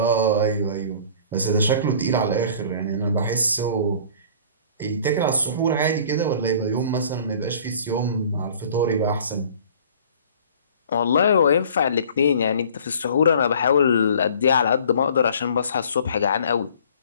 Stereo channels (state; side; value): inverted; both; correlation -0.49